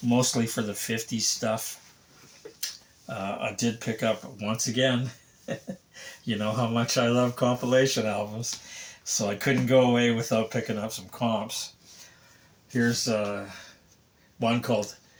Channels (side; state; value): both; identical; correlation 1.00